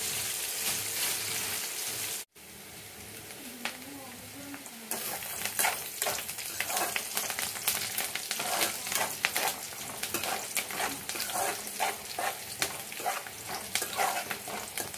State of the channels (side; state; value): both; identical; correlation 1.00